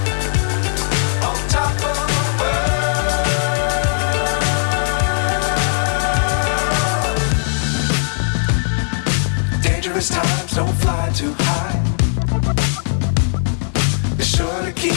Times don't fly too high. Be sure to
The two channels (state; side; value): silent; right; digital silence